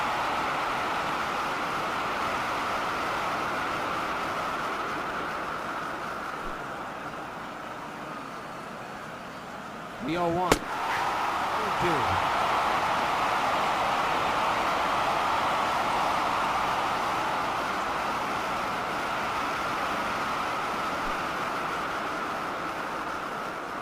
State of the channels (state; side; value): identical; both; correlation 1.00